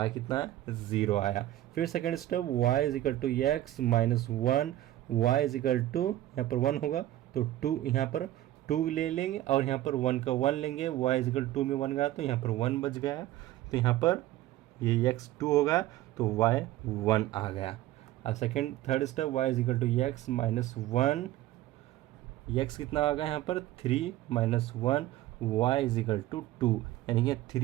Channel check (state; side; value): quieter; left; 14.6 dB